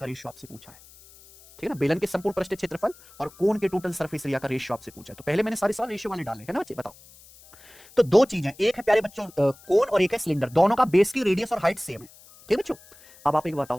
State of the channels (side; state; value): left; noise; hiss, 23 dB below the sound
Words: रेशियो आपसे पूछा है, ठीक है ना? बेलन के संपूर्ण पृष्ठीय क्षेत्रफल और कोन के टोटल सरफेस एरिया का रेशियो आपसे पूछा है। तो पहले मैंने सारे सवाल रेशियो वाले डाले, है ना बच्चे? बताओ। तो दो चीजें, एक है प्यारे बच्चों कोन और एक है सिलेंडर, दोनों का बेस की रेडियस और हाइट सेम है, ठीक है बच्चों? अब आप एक बताओ,